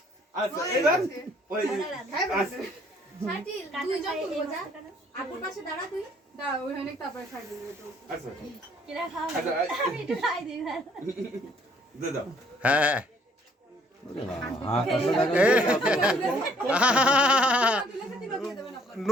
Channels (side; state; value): both; normal; correlation 0.62